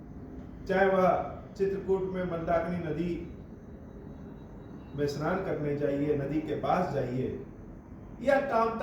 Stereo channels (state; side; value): identical; both; correlation 1.00